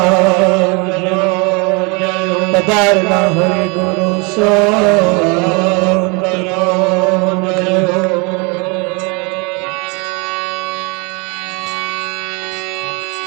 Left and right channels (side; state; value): left; quieter; 30.4 dB